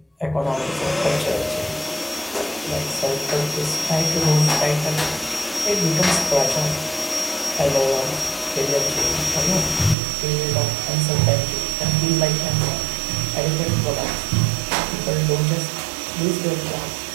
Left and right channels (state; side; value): drops out; left; at 10.0 s